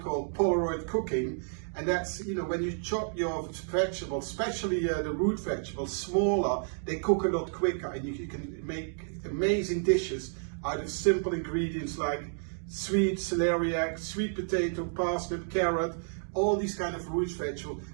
Polaroid cooking, and that's, you know, when you chop your vegetables, especially the root vegetables, smaller, they cook a lot quicker, and you can make amazing dishes out of simple ingredients like sweet celeriac, sweet potato, parsnip, carrot, all these kind of root vegetables.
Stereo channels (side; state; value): left; silent; digital silence